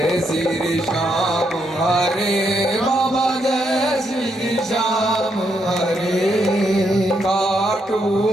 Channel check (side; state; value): both; normal; correlation 0.78